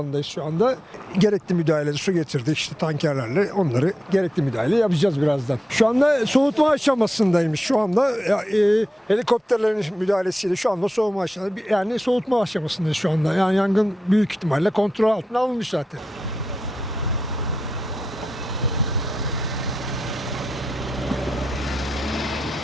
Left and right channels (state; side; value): normal; both; correlation 0.89